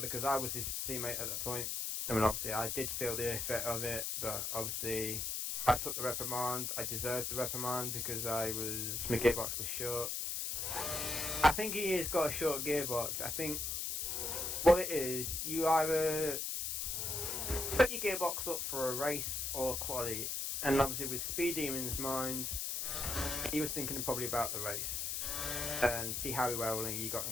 I was his teammate at that point. I mean, obviously I did feel the effect of it, but obviously I took the reprimand. I deserved the reprimand because my gearbox was short. I think he has got a short gearbox. I think what it is, you either set your gearbox up for a race or quality, and obviously with Speed Demon's mind, he was thinking probably about the race and see how well he got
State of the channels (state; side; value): noise; left; hiss, 1 dB below the sound